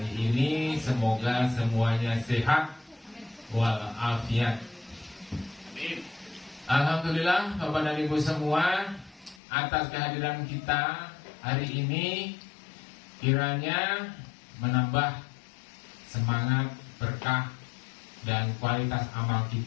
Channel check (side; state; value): right; drops out; at 9.4 s